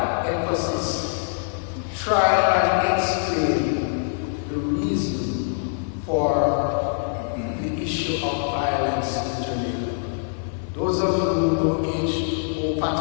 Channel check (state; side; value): silent; right; digital silence